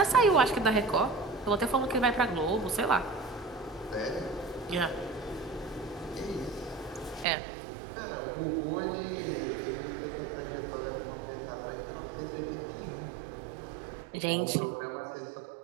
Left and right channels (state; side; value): drops out; left; at 7.2 s